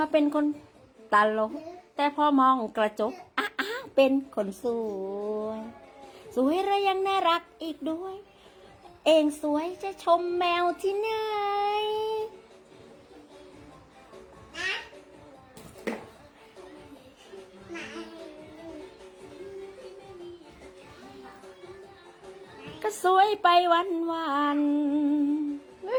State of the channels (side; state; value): both; identical; correlation 1.00